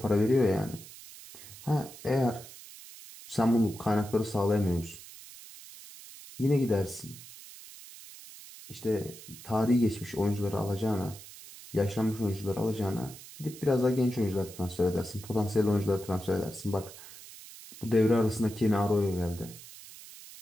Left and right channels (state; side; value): noise; right; hiss, 16 dB below the sound